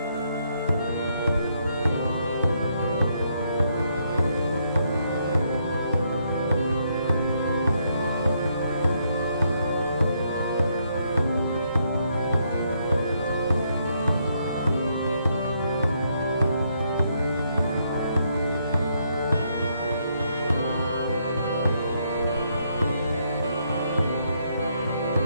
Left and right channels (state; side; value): inverted; both; correlation -0.74